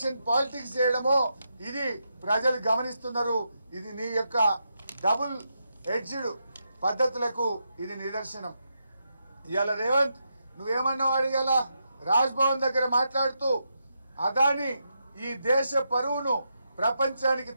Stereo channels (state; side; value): inverted; both; correlation -0.84